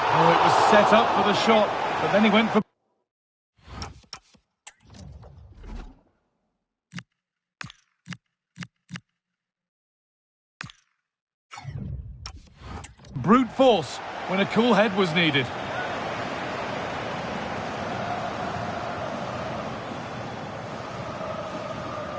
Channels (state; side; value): identical; both; correlation 1.00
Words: it was set up for the shot, but then he went for... brute force when a cool head was needed.